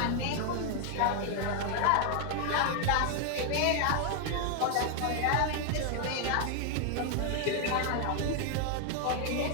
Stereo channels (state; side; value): different; both; correlation 0.00